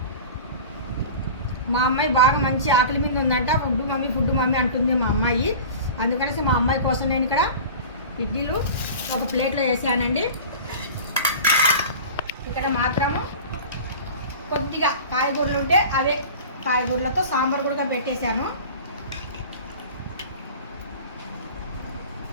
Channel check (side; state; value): both; inverted; correlation -0.37